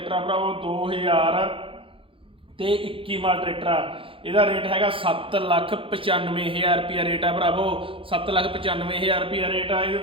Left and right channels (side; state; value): left; late; 0.26 ms